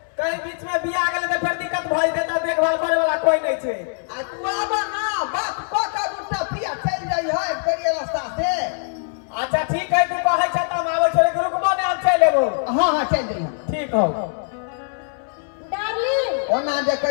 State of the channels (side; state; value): right; silent; digital silence